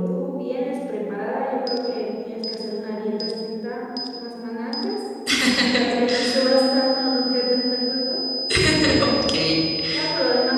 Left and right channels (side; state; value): both; identical; correlation 1.00